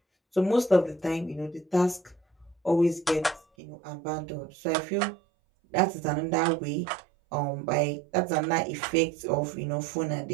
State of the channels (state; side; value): drops out; left; at 3.5 s